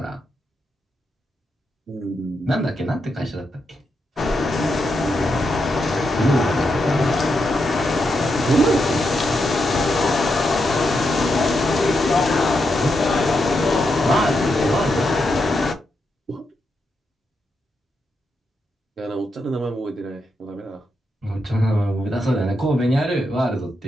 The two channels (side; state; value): both; normal; correlation 0.84